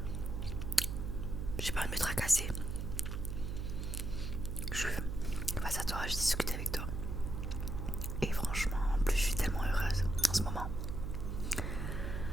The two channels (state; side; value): noise; right; hum, 3 dB below the sound